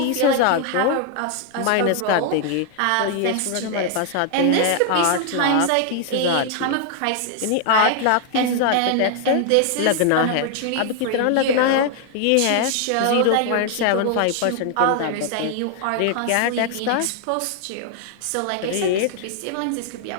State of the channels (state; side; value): different; both; correlation 0.00